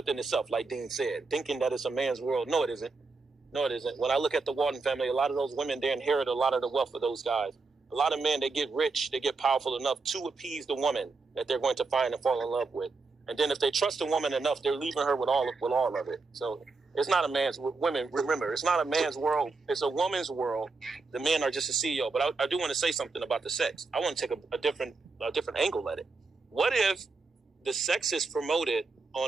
itself, like Dean said, thinking that it's a man's world. No, it isn't. No, it isn't. When I look at the Walton family, a lot of those women, they inherit a lot of the wealth of those guys. A lot of men, they get rich, they get powerful enough to appease the woman that they're going to find and fall in love with. And then if they trust a woman enough, they're leaving her with all of it. So it's not a man's, women, remember, it's not a man's world. It's a woman's world. The men are just a CEO. But I do want to say something about the sex. I want to take a different angle at it. What if the sex is promoted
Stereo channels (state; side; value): quieter; left; 4.0 dB